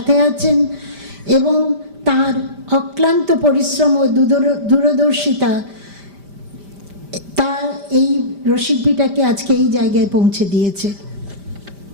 আছেন এবং তার অক্লান্ত পরিশ্রম ও দূরদর্শিতা তা এই রসিক বিটাকে আজকে এই জায়গায় পৌঁছে দিয়েছে।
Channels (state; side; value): late; left; 5.0 ms